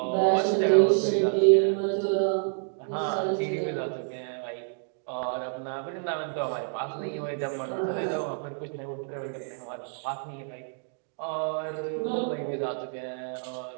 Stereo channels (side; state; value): left; silent; 59 dB below the other